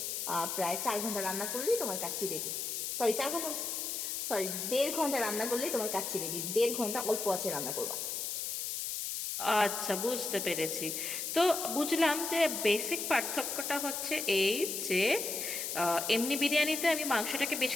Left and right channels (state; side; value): noise; left; hiss, 3 dB below the sound